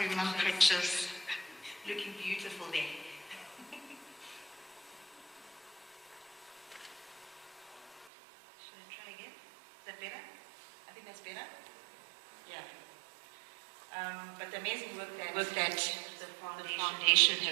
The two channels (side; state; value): left; drops out; at 8.1 s